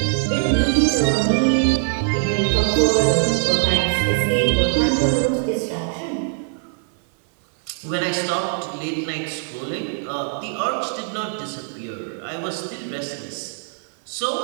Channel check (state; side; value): silent; left; 58 dB below the other